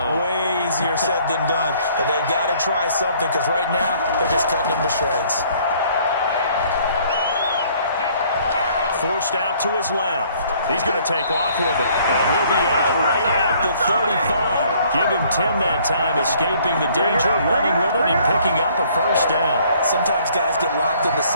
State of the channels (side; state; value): both; inverted; correlation -0.60